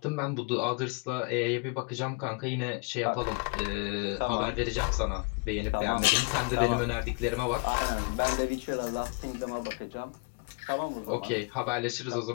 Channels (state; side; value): quieter; right; 30.7 dB